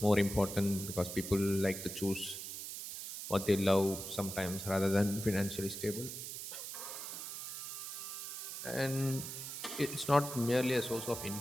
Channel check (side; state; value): right; noise; hiss, 7 dB below the sound